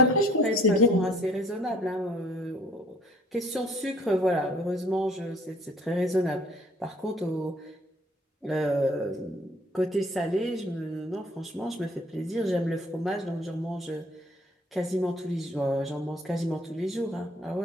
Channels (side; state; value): both; normal; correlation 0.57